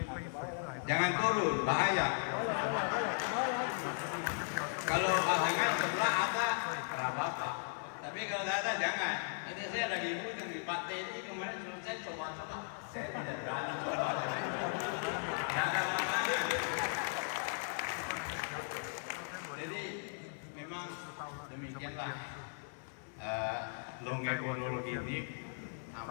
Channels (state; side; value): silent; right; digital silence